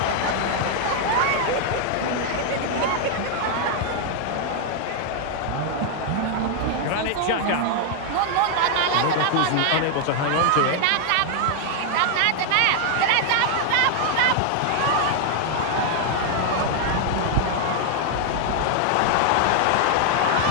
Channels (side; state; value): both; different; correlation 0.00